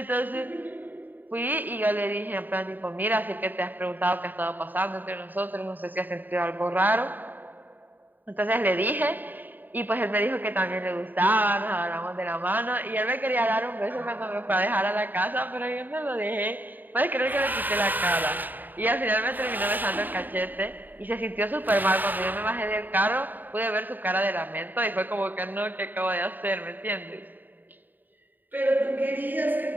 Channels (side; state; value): left; late; 0.088 ms